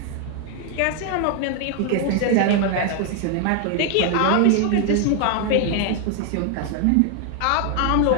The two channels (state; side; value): different; both; correlation 0.01